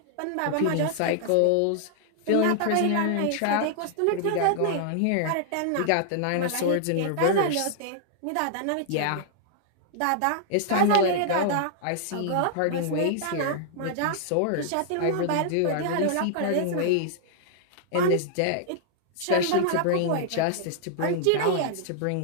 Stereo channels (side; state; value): both; different; correlation -0.01